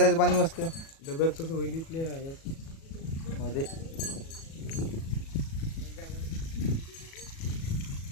पाणी मस्त डब्यात तसं होईल इथले यात. मध्ये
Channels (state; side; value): late; right; 37 ms